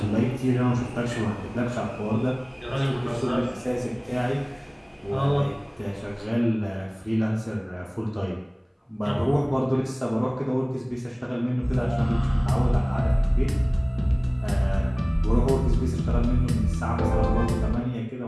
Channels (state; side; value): identical; both; correlation 1.00